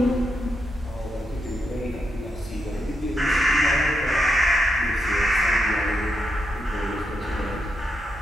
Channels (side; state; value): both; normal; correlation 0.82